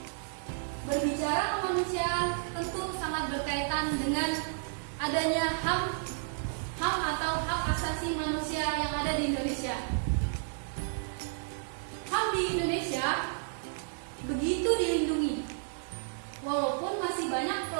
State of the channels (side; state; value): left; silent; 57 dB below the other